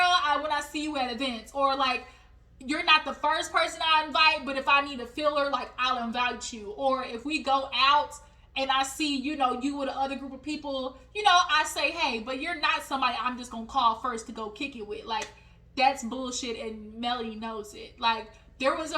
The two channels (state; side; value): identical; both; correlation 1.00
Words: when I see you at events. Or like, you're not the first person I invite, but if I need a filler, like, I'll invite you. Or if we go out and I see, you know, you with another group of people, you know, I say, hey, but you're not somebody I'm just going to call first to go kick it with. Like, that's bullshit, and Melody knows it. Like, there was